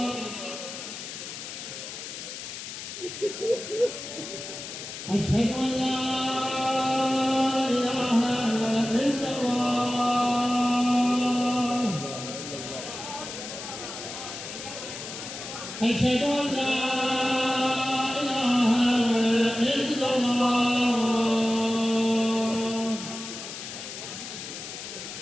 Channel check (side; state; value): left; noise; hiss, 9 dB below the sound